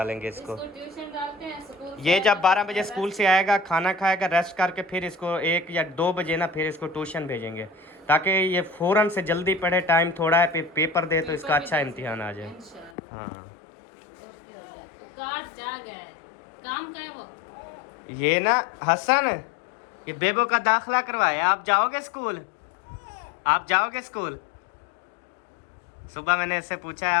इसको। ट्यूशन डालते हैं स्कूल। ये जब 12 बजे स्कूल से आएगा, खाना खाएगा, रेस्ट करके फिर इसको 1 या 2 बजे ना फिर इसको ट्यूशन भेजेंगे, ताकि ये फ़ौरन से जल्दी पढ़े, टाइम थोड़ा है, पेपर दे तो इसका अच्छा इम्तिहान आ जाए। इंशाल्लाह। हाँ, तो कार्ड जा गया है, काम का है वो। ये ना हसन, ये बेबो का दाखिला करवाया, आप जाओगे स्कूल? आप जाओगे स्कूल? सुबह मैंने इससे पूछा है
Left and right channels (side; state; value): right; drops out; at 13.0 s